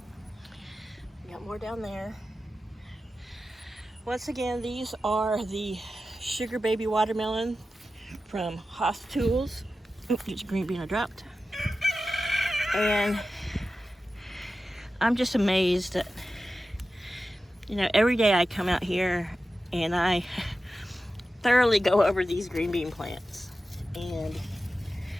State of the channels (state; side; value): normal; both; correlation 0.93